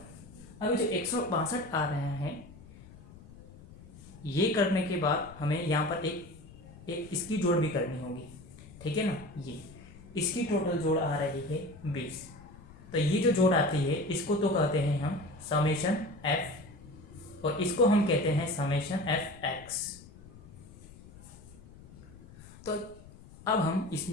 अभी जो 162 आ रहे हैं, ये करने के बाद हमें यहाँ पर एक इसकी जोड़ भी करनी होगी, ठीक है ना। ये इसकी टोटल जोड़ आ रही है 20। तो ये जो जोड़ आती है इसको तो कहते हैं हम समेशन f, और इसको हम कहते हैं समेशन fx। तो अब हम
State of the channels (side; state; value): left; noise; rumble, 19 dB below the sound